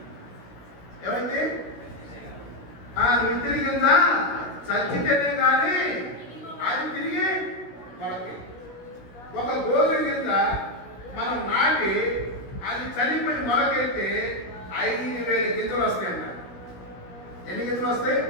ఏమైంది? విత్తిన గింజ చచ్చితేనే కానీ అది తిరిగి మొలకి. ఒక గోధుమ గింజ మనం నాటి అది చనిపోయి మొలకెత్తే 5,000 గింజలు వస్తాయంట. ఎన్ని గింజలు వస్తాయి?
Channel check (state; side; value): late; right; 16 ms